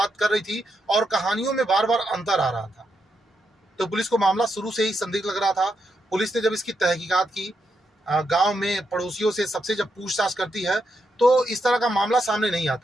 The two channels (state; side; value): normal; both; correlation 0.82